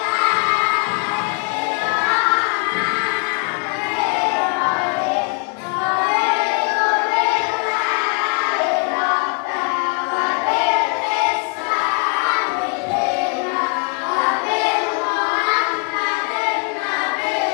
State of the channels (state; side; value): quieter; right; 34.4 dB